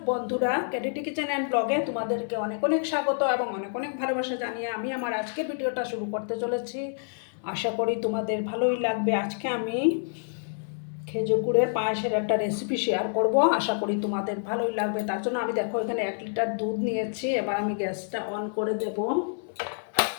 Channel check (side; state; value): right; silent; 60 dB below the other